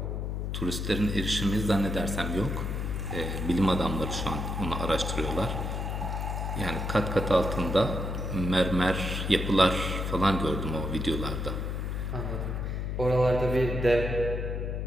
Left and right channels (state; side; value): noise; left; hum, 2 dB below the sound